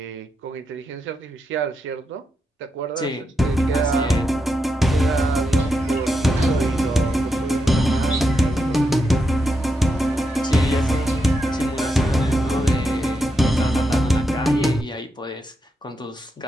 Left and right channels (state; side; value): normal; both; correlation 0.84